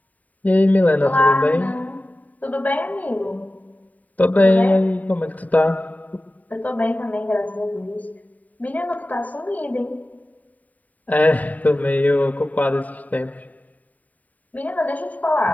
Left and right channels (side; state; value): right; late; 0.074 ms